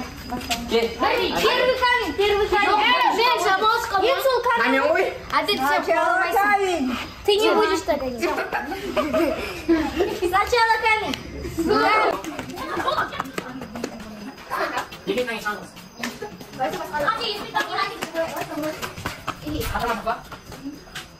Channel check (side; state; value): both; identical; correlation 1.00